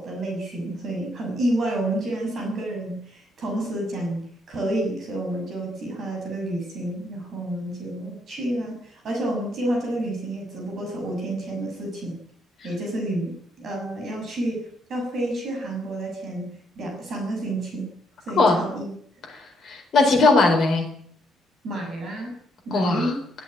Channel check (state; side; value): normal; both; correlation 0.73